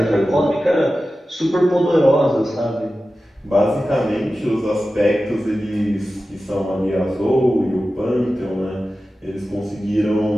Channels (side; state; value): both; normal; correlation 0.94